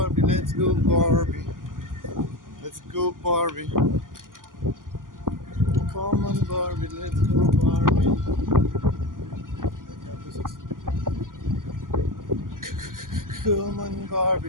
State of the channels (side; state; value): left; late; 0.90 ms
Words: let's go Barbie. Let's go Barbie. Come on Barbie, let's go Barbie. Come on